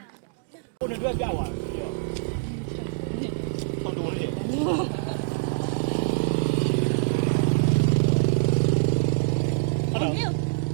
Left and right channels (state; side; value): silent; left; digital silence